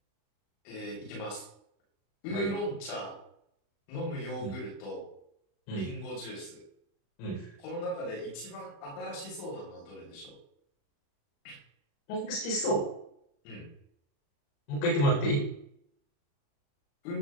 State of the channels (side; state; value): right; late; 35 ms